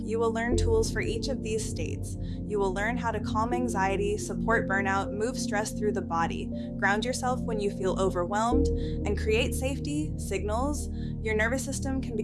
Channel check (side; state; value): both; identical; correlation 1.00